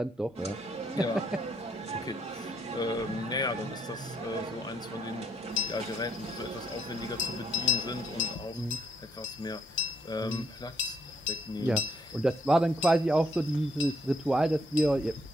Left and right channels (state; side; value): normal; both; correlation 0.72